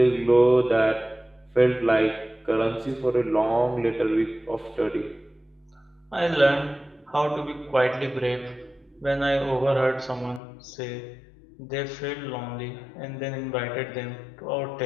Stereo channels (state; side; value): drops out; right; at 10.4 s